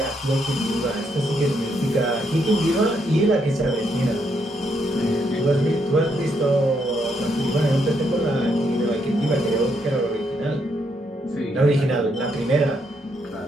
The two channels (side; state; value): both; normal; correlation 0.76